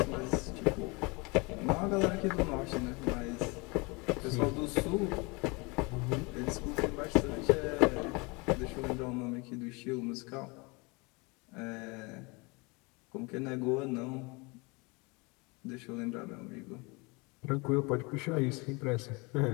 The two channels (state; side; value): quieter; right; 27.7 dB